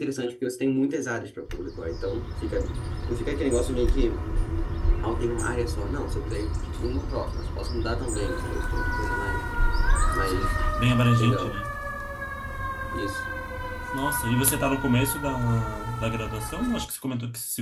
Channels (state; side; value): identical; both; correlation 1.00